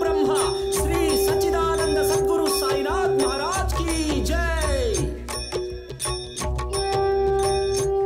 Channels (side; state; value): both; identical; correlation 1.00